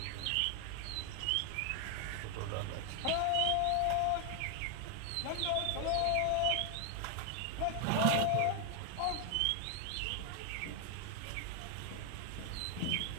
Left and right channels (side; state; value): both; different; correlation 0.00